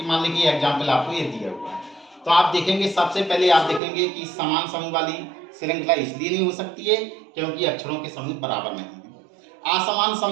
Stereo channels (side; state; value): left; drops out; at 3.8 s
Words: मान लीजिए एग्जाम्पल आपको ये दिया हुआ है, तो आप देखेंगे सबसे पहले आप देखेंगे कि समान समूह वाली श्रृंखला इसलिए नहीं हो सकती है क्योंकि अक्षरों के समूह बराबर नहीं है। असमान